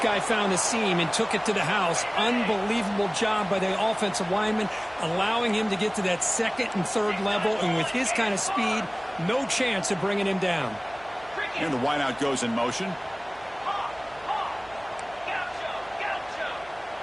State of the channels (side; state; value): right; noise; hum, 25 dB below the sound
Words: guy found a seam and took it to the house. Unbelievable job by the offensive lineman, allowing him to get to that second and third level. And with his kind of speed, no chance of bringing him down. And the wideout goes in motion.